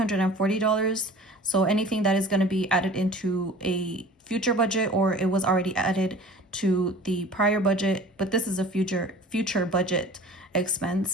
So anything that is going to be added into a future budget, or it was already added to the prior budget, but this is a future budget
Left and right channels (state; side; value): normal; both; correlation 0.44